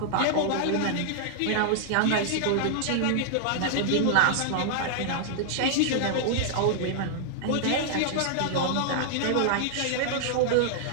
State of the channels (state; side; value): different; both; correlation -0.01